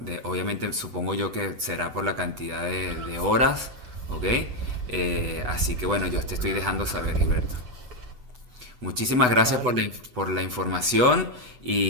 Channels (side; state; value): left; late; 8.1 ms